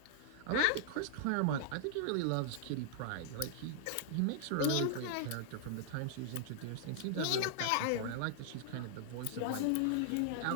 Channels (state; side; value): different; both; correlation -0.01